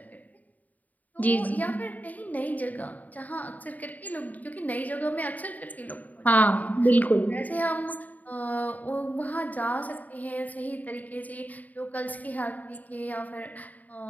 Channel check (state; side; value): late; right; 0.077 ms